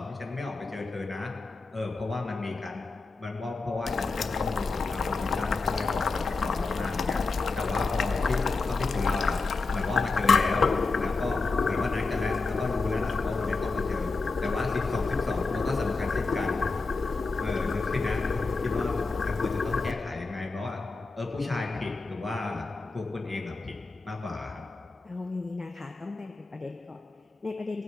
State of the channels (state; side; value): quieter; right; 3.9 dB